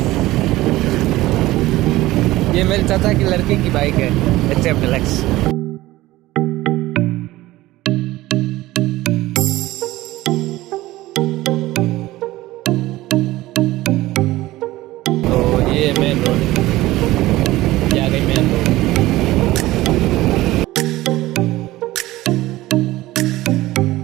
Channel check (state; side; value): quieter; left; 17.4 dB